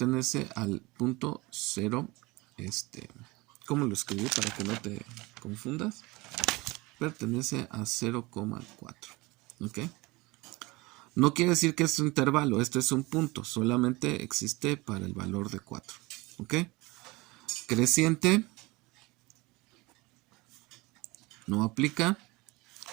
al punto 0. ¿Cómo lo escribí para que no te confundas? Pertenece a 0,4. ¿Ok? No quiere decir que es un intervalo, esto es un punto, solamente existe para el valor de 4. ¿Ok? Creciente no aplica.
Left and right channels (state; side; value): quieter; left; 23.0 dB